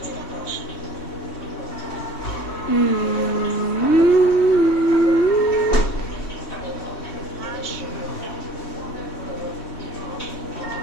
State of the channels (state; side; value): late; right; 3.1 ms